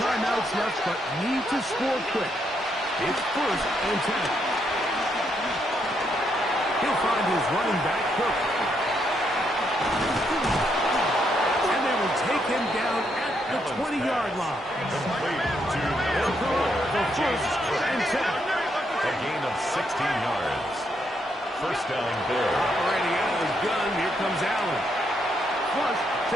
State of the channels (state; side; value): normal; both; correlation 0.77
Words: left, but need to score quick. It's first and 10. He'll find his running back, Cook. And they will take him down at the 20-yard line. They'll go up for first and 10. A gain of 16 yards. First down, Bill. Operating out of his gun, here comes Allen. Flush to